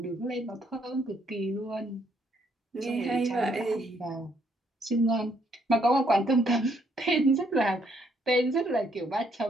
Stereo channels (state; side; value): normal; both; correlation 0.70